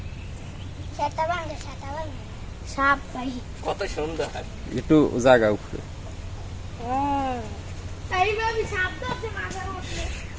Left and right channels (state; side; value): identical; both; correlation 1.00